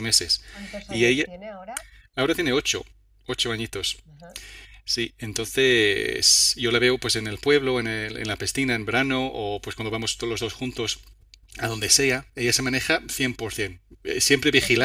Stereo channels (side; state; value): both; identical; correlation 1.00